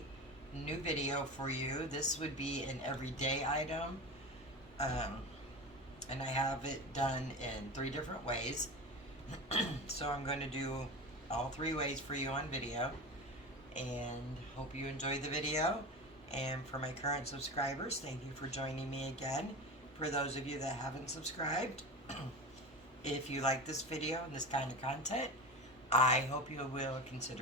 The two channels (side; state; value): both; normal; correlation 0.27